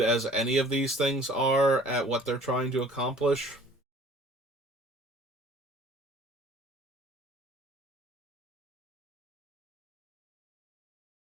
any of these things are at what they're trying to accomplish.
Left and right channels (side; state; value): both; normal; correlation 0.52